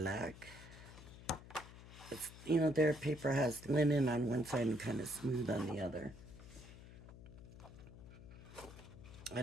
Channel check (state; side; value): noise; left; hum, 16 dB below the sound